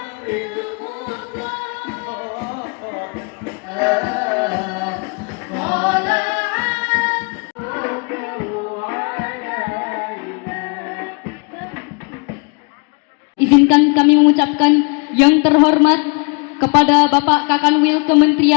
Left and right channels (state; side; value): quieter; right; 33.2 dB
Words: Izinkan kami mengucapkan yang terhormat kepada Bapak Kakanwil